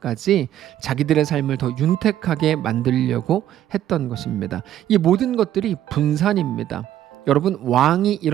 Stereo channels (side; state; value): left; quieter; 12.0 dB